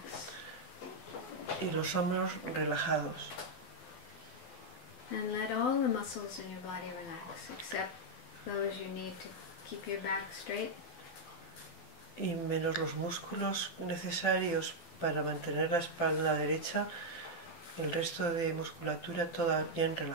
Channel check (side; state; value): right; late; 12 ms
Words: Y los hombros relajados. And let all the muscles in your body relax, except those you need to keep your back straight. Y menos los músculos necesarios para mantener la espalda derecha, el resto de musculatura toda bien